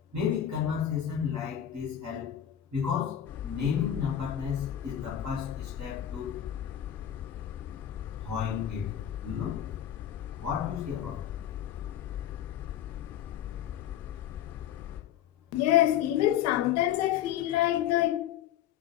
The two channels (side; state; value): right; quieter; 10.5 dB